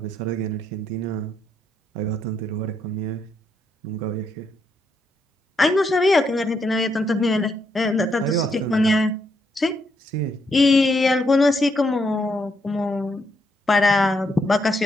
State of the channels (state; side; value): normal; both; correlation 0.77